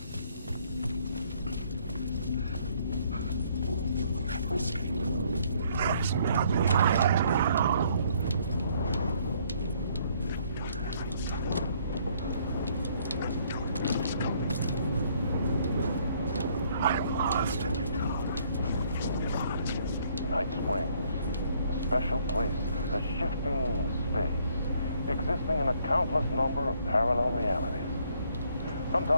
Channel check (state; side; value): inverted; both; correlation -0.65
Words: Special place, a shifting space, existing in a countless number of parallel realities.